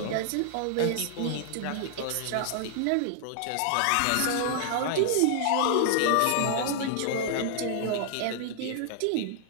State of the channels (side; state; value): both; different; correlation -0.01